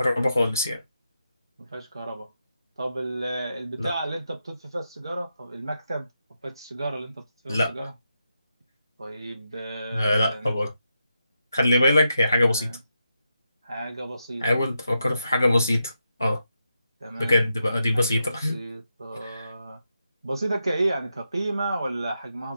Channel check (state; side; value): inverted; both; correlation -0.85